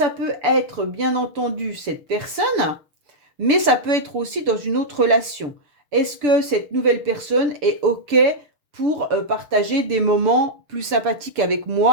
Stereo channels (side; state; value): left; late; 6.9 ms